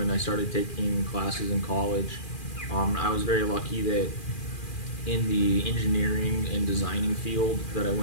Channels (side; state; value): right; late; 2.4 ms